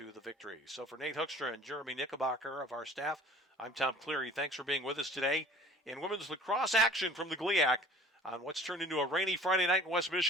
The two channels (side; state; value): both; normal; correlation 0.47